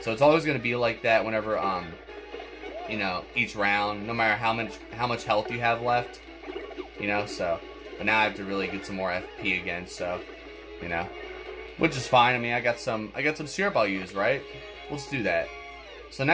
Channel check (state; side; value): identical; both; correlation 1.00